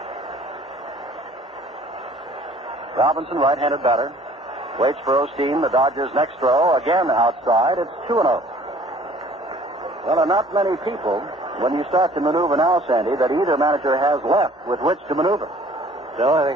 Robinson, right-handed batter, waits for Osteen. The Dodgers' next throw, again outside. It's 2-0. Well, there are not many people, when you start to maneuver now, Sandy, that either manager has left with which to maneuver. No, I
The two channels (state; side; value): normal; both; correlation 0.53